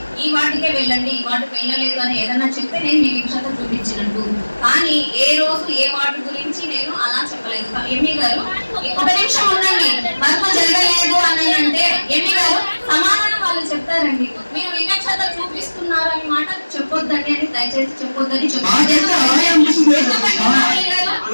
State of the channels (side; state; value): both; inverted; correlation -1.00